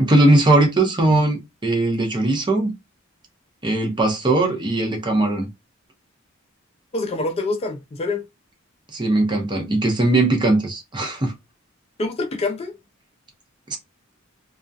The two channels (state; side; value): normal; both; correlation 0.68